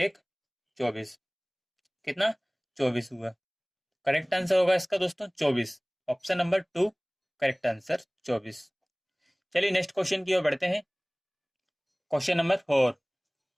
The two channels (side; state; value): both; identical; correlation 1.00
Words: 24। कितना? 24 हुआ। करेक्ट आंसर होगा इसका दोस्तों 24। Option number 2 correct answer 24। चलिए नेक्स्ट क्वेश्चन की ओर बढ़ते हैं। Question number 4।